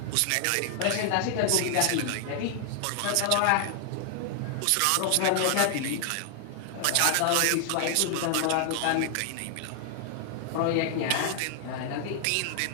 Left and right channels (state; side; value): different; both; correlation 0.00